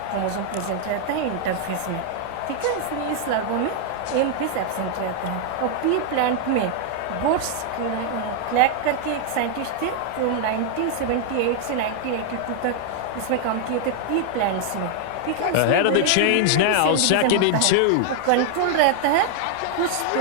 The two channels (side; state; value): both; different; correlation 0.00